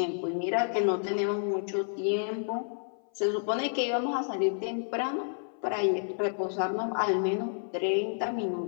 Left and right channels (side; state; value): right; silent; 55 dB below the other